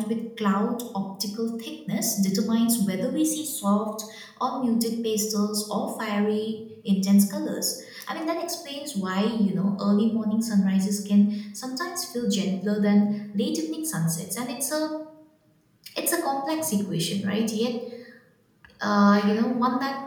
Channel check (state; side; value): identical; both; correlation 1.00